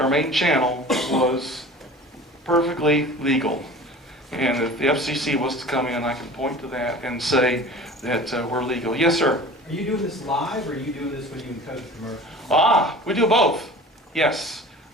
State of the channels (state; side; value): normal; both; correlation 0.40